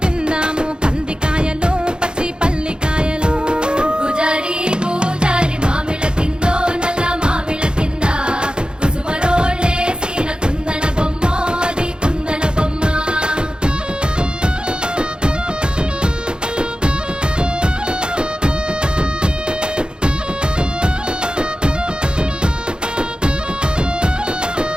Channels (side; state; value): left; late; 0.049 ms